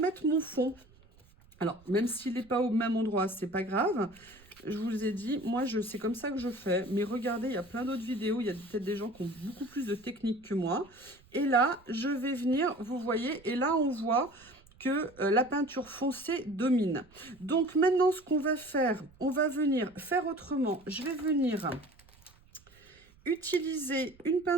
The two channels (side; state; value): right; noise; rumble, 28 dB below the sound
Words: mon fond. Alors, même s'il n'est pas au même endroit, c'est pas grave. Je vous ai dit, moi, c'est comme ça que je fais. Mais regardez, il y a plein d'autres vidéos. Il y a peut-être des gens qui ont beaucoup plus de technique que moi. Et là, je vais venir, vous voyez, et là, on voit que la peinture foncée domine. Donc, maintenant, ce qu'on va faire, on va venir faire autrement. Je vais venir utiliser une